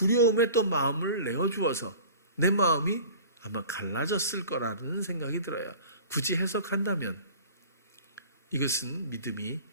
또 마음을 내어주어서 내 마음이 아마 갈라졌을 거라는 생각이 들어요. 굳이 해석한다면 이것은 믿음이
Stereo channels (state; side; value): inverted; both; correlation -0.42